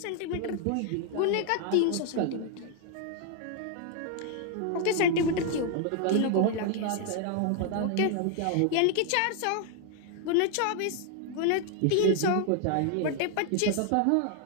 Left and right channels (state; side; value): different; both; correlation 0.00